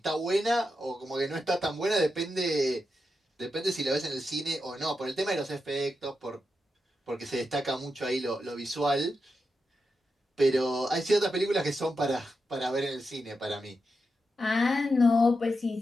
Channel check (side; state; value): both; normal; correlation 0.87